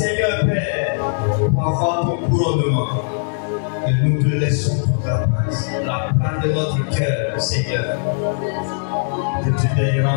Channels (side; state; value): right; silent; 65 dB below the other